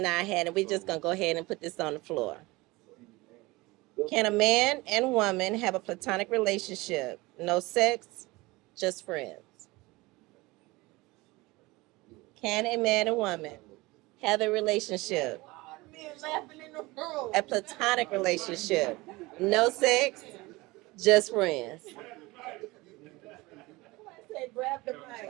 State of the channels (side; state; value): left; quieter; 21.9 dB